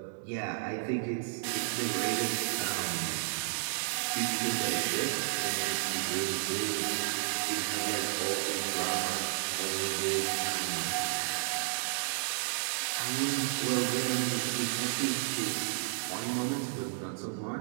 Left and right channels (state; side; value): silent; left; 56 dB below the other